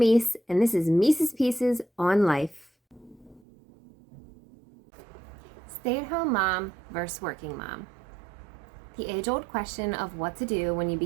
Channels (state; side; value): drops out; left; at 3.4 s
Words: and this is Meese's Pieces on Life. Stay-at-home mom versus working mom. The age-old question of what to do when you